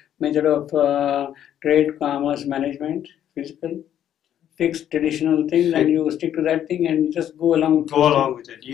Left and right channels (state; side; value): quieter; right; 10.5 dB